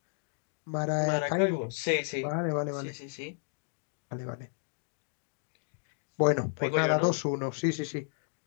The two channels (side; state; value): right; silent; digital silence